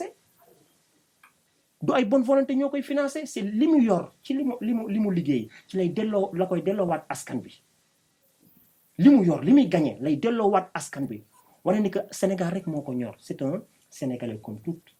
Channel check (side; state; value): both; identical; correlation 1.00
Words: du ay bonne volonté ñoo koy financé c'est li mu yor ci li mu liggéey ci lay delloo la koy delloowaat askan bi li mu yor li muy gagné lay delloowaat askan bi wane ni que Sénégal rek moo ko ñor c'est un Sénégalais comme tout